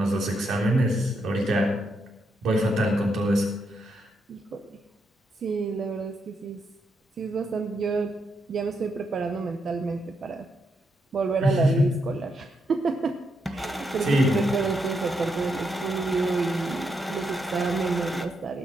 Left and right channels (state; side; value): normal; both; correlation 0.80